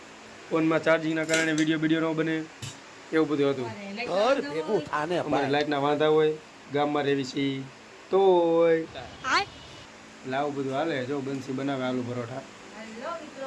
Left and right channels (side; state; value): both; identical; correlation 1.00